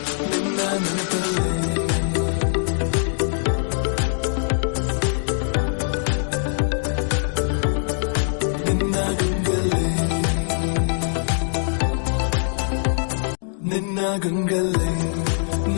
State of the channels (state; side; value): silent; right; digital silence